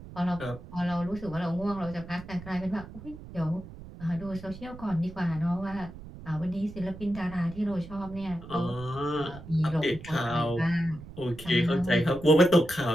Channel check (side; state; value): right; noise; rumble, 15 dB below the sound